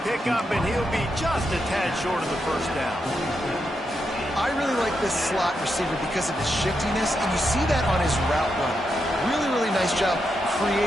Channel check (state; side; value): normal; both; correlation 0.84